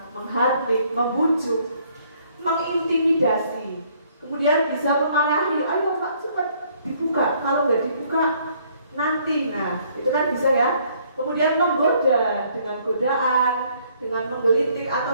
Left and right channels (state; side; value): inverted; both; correlation -0.64